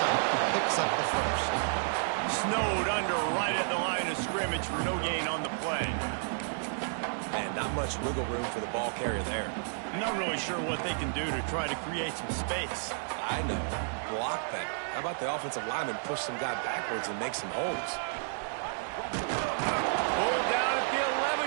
picks up the first. Snowed under right at the line of scrimmage for no gain on the play. And not much wiggle room for the ball carrier there. I'm not really sure what they can do to try to create some space. I know. Block better. How about the offensive lineman push some guy backwards and make some holes? Pulled down at the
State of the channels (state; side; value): silent; left; digital silence